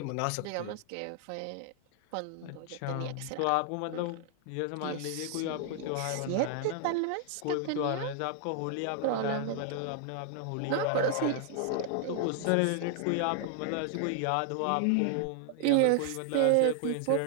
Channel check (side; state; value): both; different; correlation 0.00